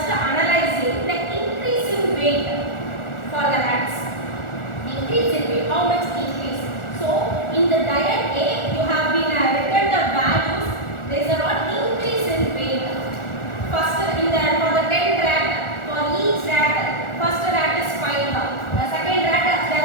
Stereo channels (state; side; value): late; right; 1.4 ms